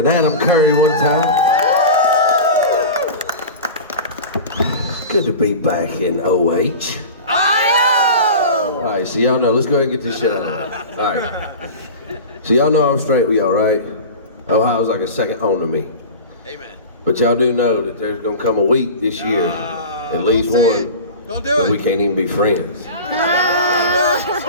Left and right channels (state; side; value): inverted; both; correlation -0.32